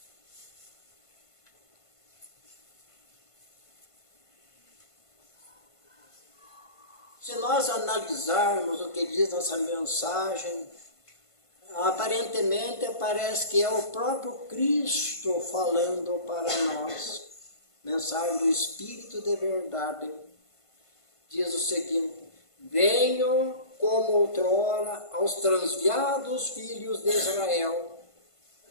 Se nós analisarmos o que diz essa mensagem, aparentemente parece que é o próprio Cristo falando para nós. Mensagem do Espírito de verdade. Diz o seguinte: venho como outrora aos transviados filhos de Israel,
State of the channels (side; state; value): right; late; 1.5 ms